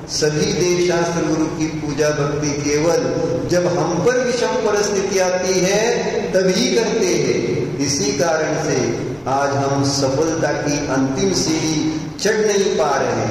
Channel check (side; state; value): both; identical; correlation 1.00